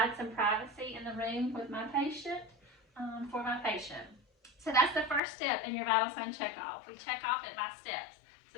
some privacy in the room with my patient. For my patient. So that's the first step in your vital sign checkoff. We check off it by steps.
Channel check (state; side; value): drops out; right; at 5.2 s